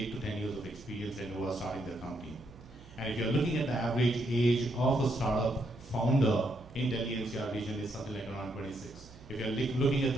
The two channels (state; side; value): noise; right; hum, 21 dB below the sound